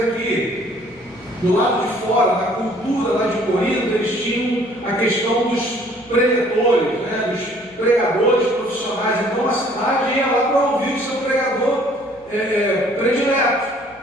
aqui, do lado de fora, da cultura lá de Corinto, eles tinham a questão dos preletores, né? Dos pregadores profissionais. Então a cidade ia lá para ouvir o seu pregador predileto.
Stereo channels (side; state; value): left; noise; hum, 29 dB below the sound